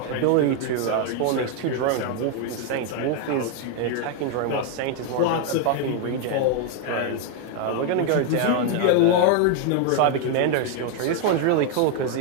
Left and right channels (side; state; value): both; different; correlation 0.00